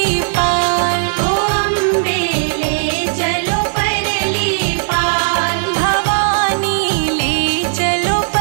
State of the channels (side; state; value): left; silent; digital silence